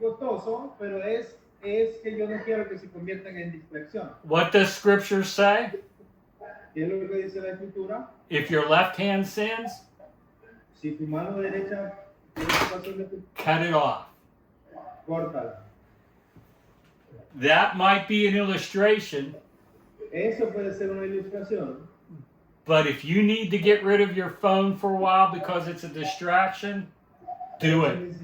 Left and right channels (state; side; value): identical; both; correlation 1.00